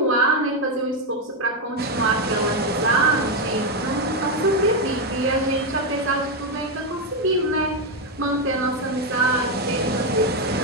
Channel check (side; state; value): both; normal; correlation 0.05